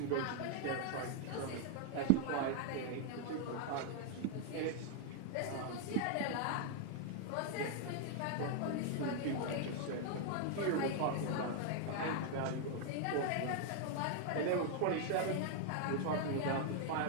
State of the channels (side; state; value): both; different; correlation 0.00